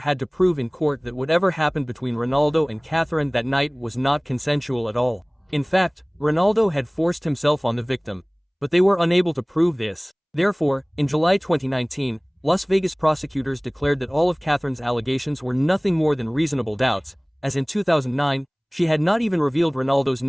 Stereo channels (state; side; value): identical; both; correlation 1.00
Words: to prove in court that whatever happened between Ronaldo and Catherine that night was not consensual at all. In fact, Ronaldo had forced himself on the victim, but they were unable to prove this. Therefore, in July 2019, Las Vegas prosecutors declared that all of Catherine's allegations were nothing more than reasonable doubts, as in 2009, she had not even revealed Ronaldo's